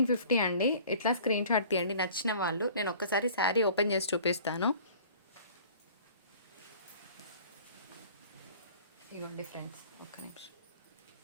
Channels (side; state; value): both; inverted; correlation -0.48